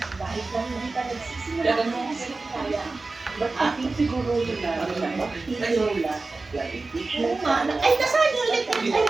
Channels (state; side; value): quieter; left; 3.6 dB